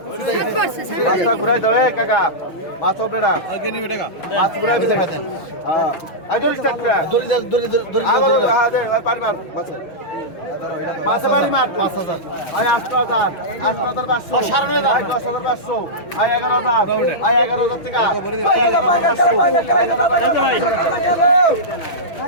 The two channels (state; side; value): late; right; 6.1 ms